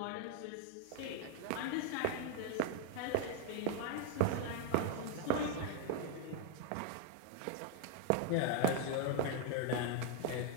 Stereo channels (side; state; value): both; different; correlation 0.00